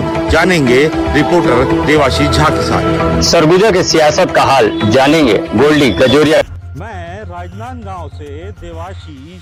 जानेंगे रिपोर्टर देवाशीष झा के साथ। सरगुजा के सियासत का हाल जानेंगे गोल्डी कजोरिया। मैं राजनांदगांव से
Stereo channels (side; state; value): both; identical; correlation 1.00